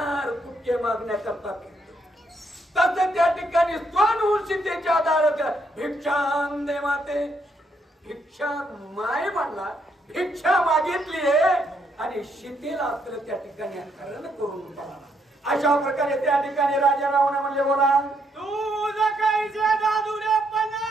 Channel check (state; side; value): normal; both; correlation 0.75